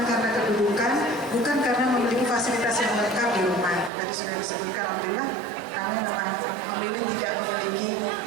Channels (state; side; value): drops out; left; at 3.9 s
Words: karena kedudukan, bukan karena memiliki fasilitas yang lengkap di rumah. Tadi sudah disebutkan, alhamdulillah kami memang memilih tidak memiliki